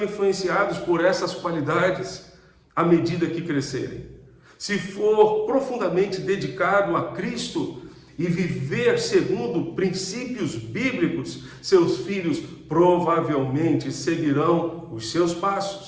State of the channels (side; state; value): both; identical; correlation 1.00